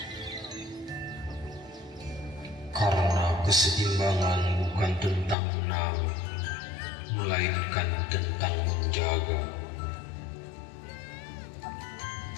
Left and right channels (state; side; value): drops out; right; at 5.4 s